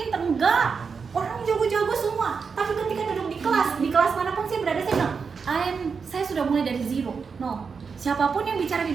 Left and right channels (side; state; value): left; quieter; 5.5 dB